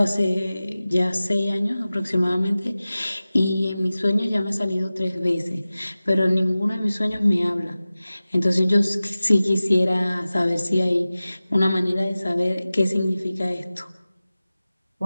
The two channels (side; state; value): both; inverted; correlation -0.97